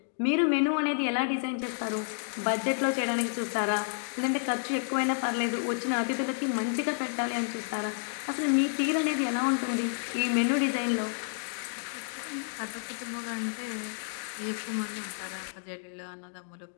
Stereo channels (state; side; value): silent; right; digital silence